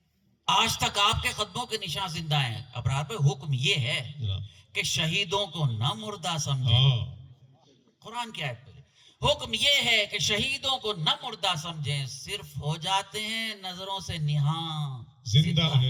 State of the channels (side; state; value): both; identical; correlation 1.00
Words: آج تک آپ کے قدموں کے نشان زندہ ہیں. ابرار پہ حکم یہ ہے کہ شہیدوں کو نہ مردہ سمجھیں. قرآن کی آیت پہ حکم یہ ہے کہ شہیدوں کو نہ مردہ سمجھیں، صرف ہو جاتے ہیں نظروں سے نہاں زندہ